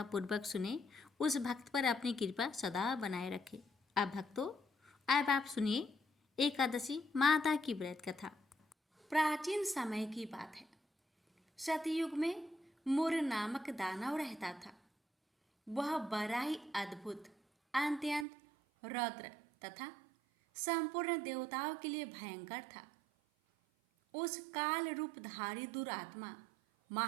पूर्वक सुने, उस भक्त पर अपनी कृपा सदा बनाए रखे। अब भक्तों, अब आप सुनिए एकादशी माता की व्रत कथा। प्राचीन समय की बात है। सतयुग में मुर नामक दानव रहता था। वह बड़ा ही अद्भुत, अत्यंत रौद्र तथा संपूर्ण देवताओं के लिए भयंकर था। उस काल रूपधारी दुरात्मा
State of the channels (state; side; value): drops out; left; at 18.2 s